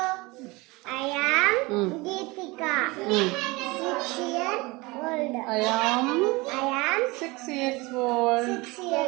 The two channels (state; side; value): quieter; left; 23.6 dB